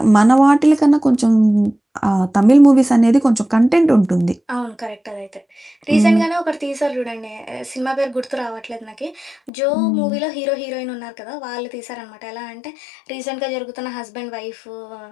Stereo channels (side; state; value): right; drops out; at 9.5 s